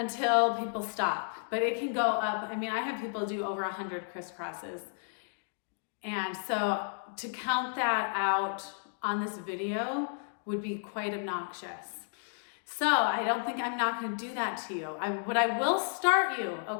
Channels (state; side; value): silent; right; digital silence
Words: people stop. But it can go up. I mean, I have people do over 100 crisscrosses. And so to count that out on this video would be quite obnoxious. So I'm not gonna do that to you. But I will start you,